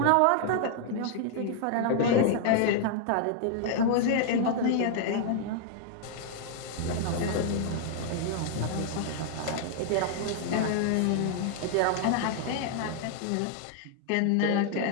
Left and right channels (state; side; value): different; both; correlation 0.00